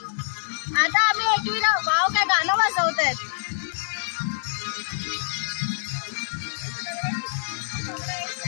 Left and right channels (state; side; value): silent; right; digital silence